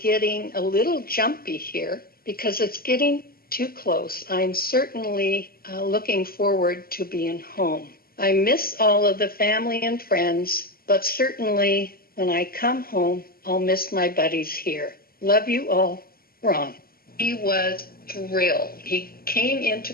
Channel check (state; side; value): late; right; 0.43 ms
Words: a little jumpy here because it's getting too close. I'm certainly looking forward to being home. I miss all of the family and friends, but certainly when I come home, I'll miss my buddies here. Love you all, Ron. He was thrilled. He came into